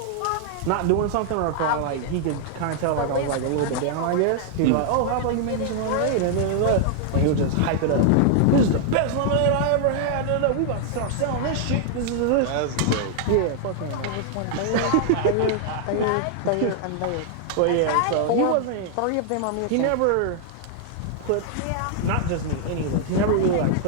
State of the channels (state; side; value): different; both; correlation 0.00